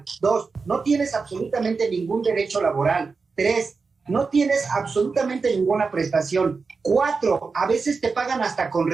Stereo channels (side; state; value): left; quieter; 4.6 dB